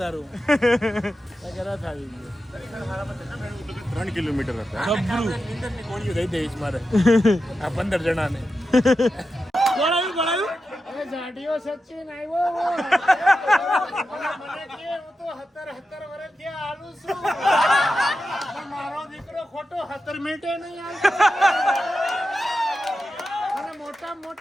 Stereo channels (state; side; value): normal; both; correlation 0.90